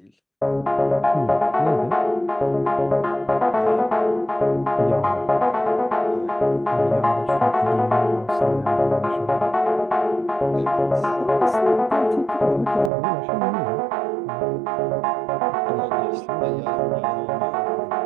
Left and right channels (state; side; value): drops out; left; at 12.9 s